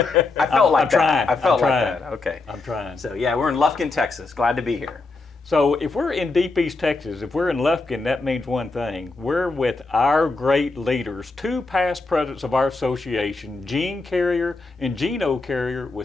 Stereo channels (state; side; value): quieter; right; 3.6 dB